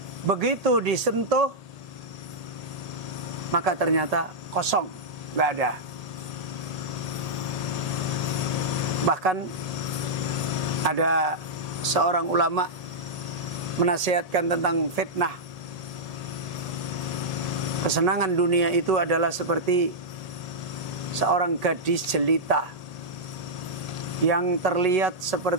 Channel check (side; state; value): left; late; 1.8 ms